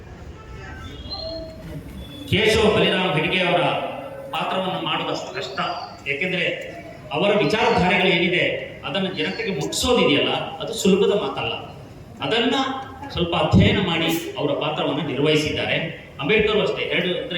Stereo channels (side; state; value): both; identical; correlation 1.00